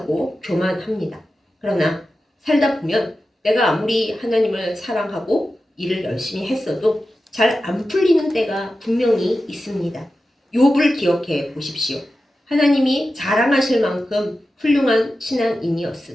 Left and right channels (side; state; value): both; normal; correlation 0.92